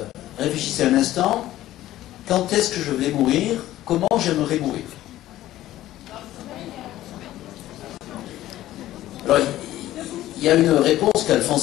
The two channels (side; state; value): right; quieter; 14.5 dB